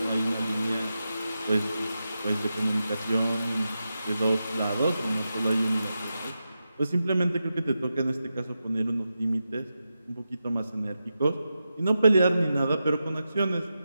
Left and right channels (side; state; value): both; inverted; correlation -0.89